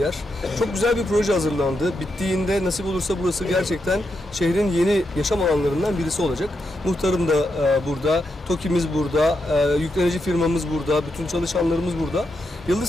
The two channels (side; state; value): both; normal; correlation 0.84